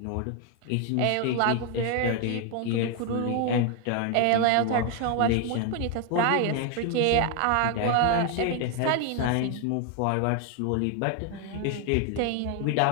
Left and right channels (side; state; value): both; different; correlation 0.01